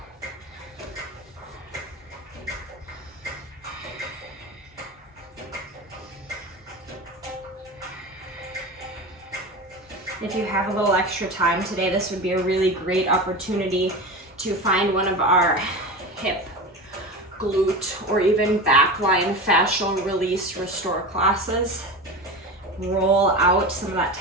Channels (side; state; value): both; normal; correlation 0.27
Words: If you have a little extra time today, this would be a really great opportunity to find one of our hip, glute, or even backline fascial release restore classes. Roll out some of that